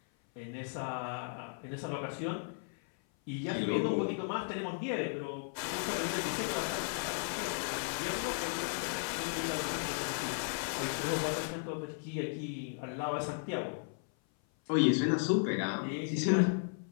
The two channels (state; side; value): silent; right; 54 dB below the other